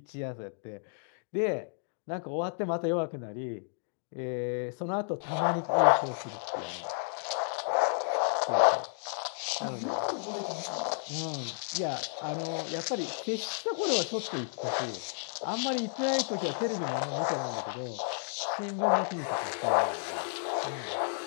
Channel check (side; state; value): right; silent; digital silence